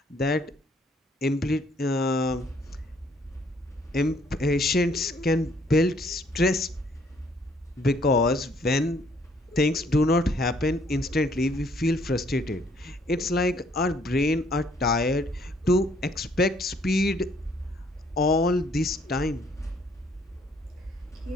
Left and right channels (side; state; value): both; normal; correlation 0.64